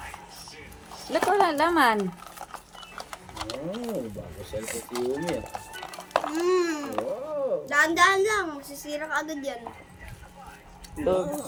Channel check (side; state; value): both; identical; correlation 1.00